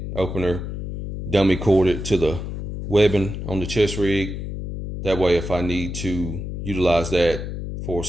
opener, dummy corded to the webbing on the chest rig. That way, if I need to utilize that for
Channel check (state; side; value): noise; left; hum, 6 dB below the sound